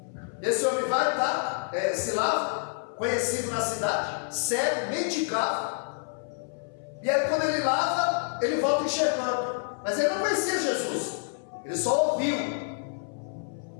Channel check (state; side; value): silent; right; 57 dB below the other